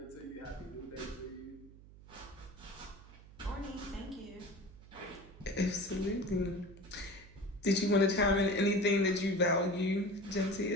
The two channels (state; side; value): noise; right; hum, 20 dB below the sound